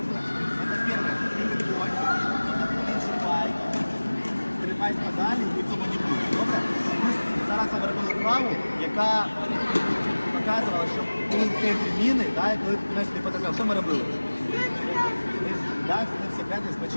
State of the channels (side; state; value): both; inverted; correlation -1.00